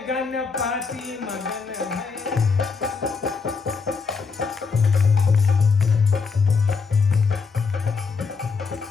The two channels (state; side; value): quieter; right; 5.0 dB